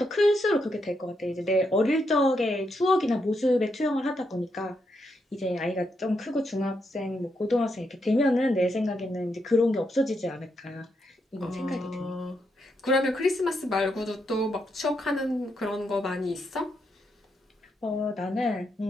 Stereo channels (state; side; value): normal; both; correlation 0.80